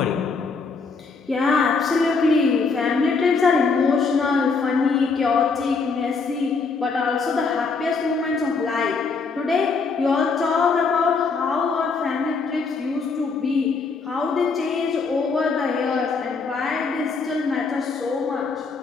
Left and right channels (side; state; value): right; quieter; 4.6 dB